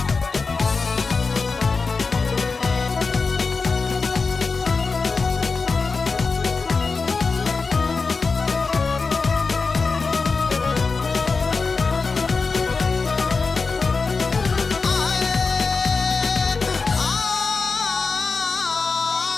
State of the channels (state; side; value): quieter; right; 4.4 dB